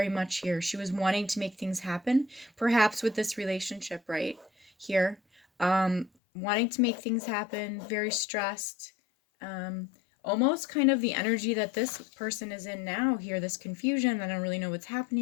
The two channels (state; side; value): drops out; right; at 6.1 s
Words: much here. She was wanting to make things happen, perhaps with this relationship right here. Wanting to make things happen, very stressed. Almost kind of the energy that this person is in now here, this confusion. I don't really know what's